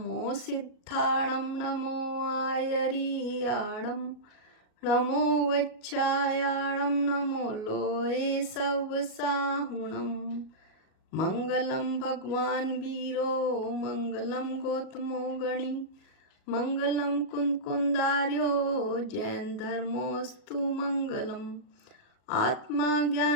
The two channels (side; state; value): right; late; 37 ms